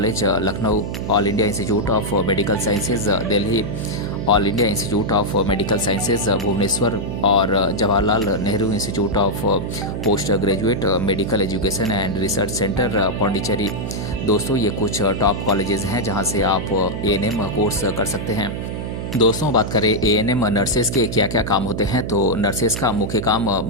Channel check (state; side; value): noise; right; hum, 5 dB below the sound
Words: Lucknow, all India institute of medical sciences Delhi, all India institute of medical sciences Bhubaneswar और Jawaharlal Nehru institute of post graduate medical education and research centre Pondicherry. दोस्तों ये कुछ top colleges हैं जहां से आप ANM course कर सकते हैं। दोस्तों बात करें एएनएम नर्सेस के क्या क्या काम होते हैं तो नर्सेस का मुख्य काम